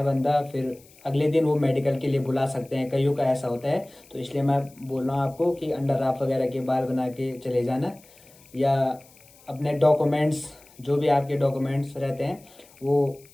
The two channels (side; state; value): left; noise; hiss, 26 dB below the sound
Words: बंदा, फिर अगले दिन वो मेडिकल के लिए बुला सकते हैं, कईयों का ऐसा होता है। तो इसलिए मैं बोल रहा हूँ आपको कि अंडर राफ वगैरह के बाल बना के चले जाना, या अपने डॉक्यूमेंट्स, जो भी आपके डॉक्यूमेंट्स रहते हैं वो